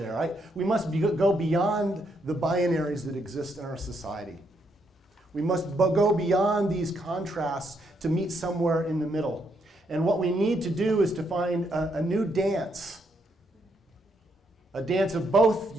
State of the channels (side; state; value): both; normal; correlation 0.76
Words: Right? We must go beyond the binaries that exist in our society. We must go beyond these contrasts to meet somewhere in the middle. And what we need to do is to find a new dance a dance of both